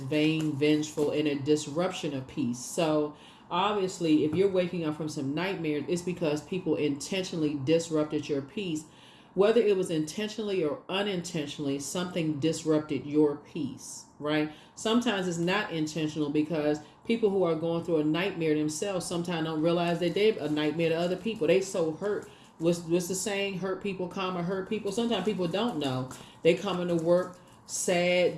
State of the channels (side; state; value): both; identical; correlation 1.00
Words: vengeful, and a disruption of peace. So obviously, if you're waking up from some nightmares, it's because people intentionally disrupted your peace. Whether it was intentionally or unintentionally, something disrupted your peace, right? Sometimes it's not intentional, because people who are going through a nightmare themselves sometimes don't realize that they're a nightmare to other people. They so hurt. What's the saying? Hurt people, hurt people. Sometimes people don't know. They come into work sad,